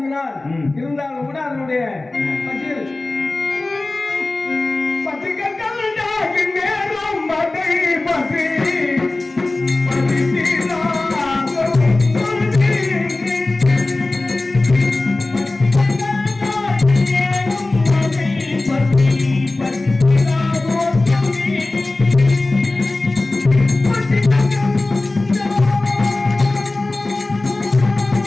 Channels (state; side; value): quieter; right; 3.0 dB